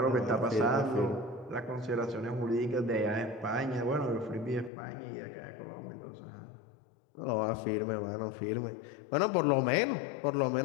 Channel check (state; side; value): drops out; right; at 4.7 s